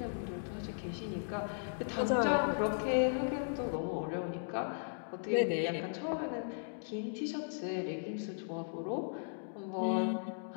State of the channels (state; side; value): silent; right; digital silence